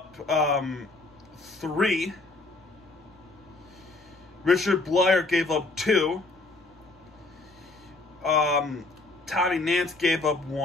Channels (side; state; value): right; quieter; 3.3 dB